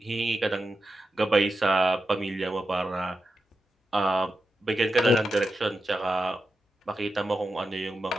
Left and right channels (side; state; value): both; normal; correlation 0.89